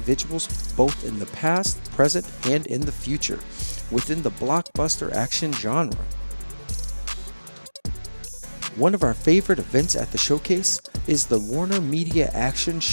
both in the past, present, and in the future within the blockbuster action genre. One of our favorite events at the showcase is the Warner Media Action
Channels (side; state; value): both; inverted; correlation -1.00